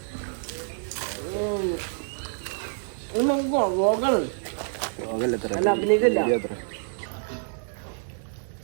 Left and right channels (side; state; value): left; silent; 60 dB below the other